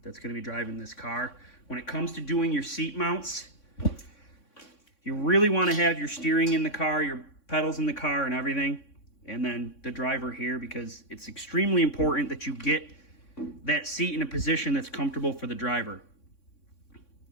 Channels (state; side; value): late; right; 3.6 ms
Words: that's going to be driving this car. When it comes to doing your seat mounts, you really want to have your steering in the car, your pedals in the car and everything, and then the driver here, because it's extremely important that you get that seat in a position that's comfortable for the driver.